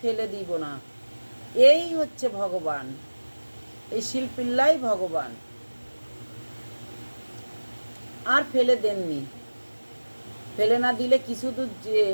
ফেলে দিব না, এই হচ্ছে ভগবান, এই শিলপিল্লাই ভগবান। আর ফেলে দেননি। ফেলে না দিলে কিছু দূর যে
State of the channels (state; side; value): inverted; both; correlation -1.00